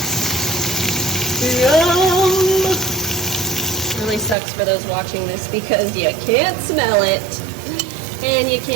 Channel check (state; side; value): drops out; left; at 4.4 s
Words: Yum! Really sucks for those watching this because you can't smell it and you